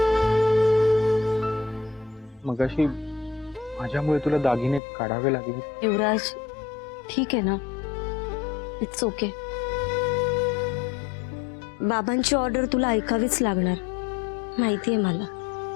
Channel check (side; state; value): right; drops out; at 4.8 s